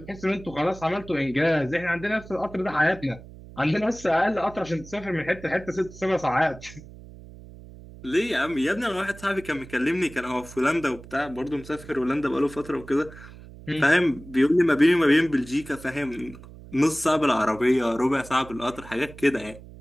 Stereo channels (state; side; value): noise; right; hum, 18 dB below the sound